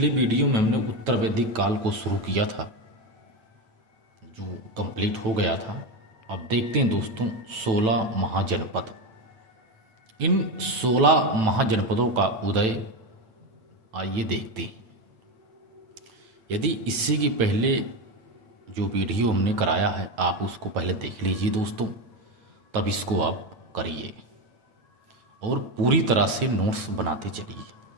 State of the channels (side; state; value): left; late; 9.1 ms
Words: वीडियो में हमने उत्तर वैदिक काल को शुरू किया था जो कंप्लीट हो गया था। अब देखते हैं दोस्तों 16 महाजनपद। इन 16 महाजनपदों का उदय आइए देखते हैं। यदि इससे की पहले जो वीडियो हमने कराया है आप उसको पहले देख लीजिए दोस्तों, तब इसको आप करिए और पूरी तरह से नोट्स बनाते चलिए।